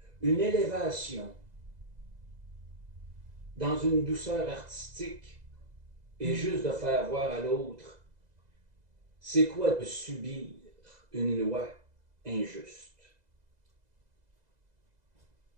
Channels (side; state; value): left; late; 2.0 ms